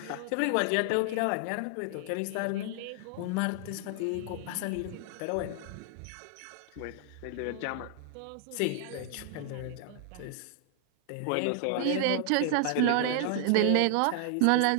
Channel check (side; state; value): both; different; correlation 0.00